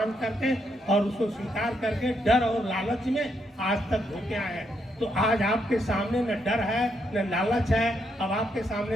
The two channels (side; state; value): both; normal; correlation 0.78